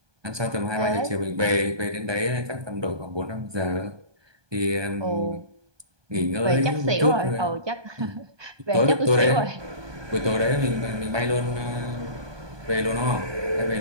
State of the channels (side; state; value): left; late; 1.2 ms